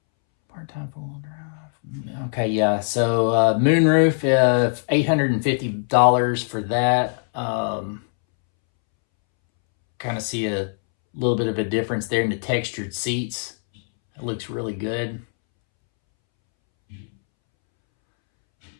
Part-time four-wheel drive. Okay, yeah. So moonroof, $850 for that. Kind of see a little bit of a difference there in the textured seats. It looks really good.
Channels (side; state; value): right; silent; 64 dB below the other